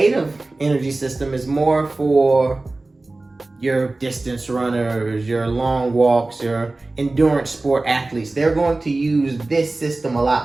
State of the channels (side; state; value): left; quieter; 3.1 dB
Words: energy system is more for your distance runners, your long walks, your endurance sport athletes. They're going to use this system a